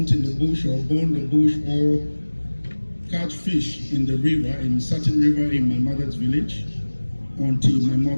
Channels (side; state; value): both; inverted; correlation -1.00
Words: in the bush or burn the bush or catch fish in the river, in a certain river in my mother's village, until my